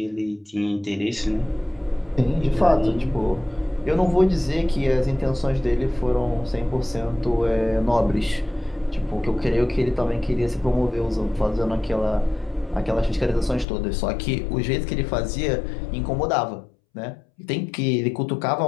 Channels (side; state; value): right; drops out; at 13.7 s